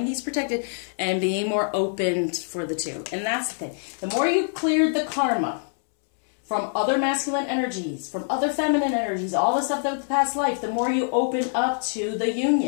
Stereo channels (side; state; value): right; silent; 62 dB below the other